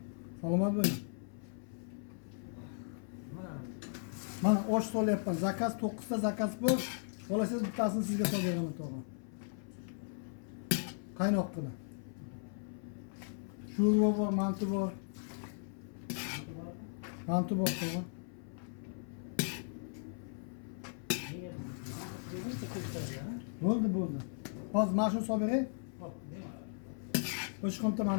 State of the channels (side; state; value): right; silent; 53 dB below the other